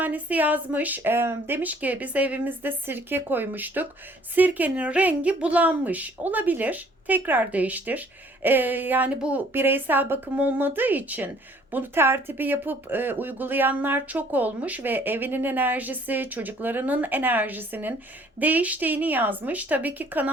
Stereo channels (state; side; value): normal; both; correlation 0.58